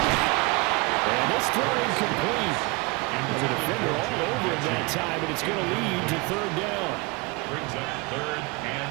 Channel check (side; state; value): left; quieter; 26.6 dB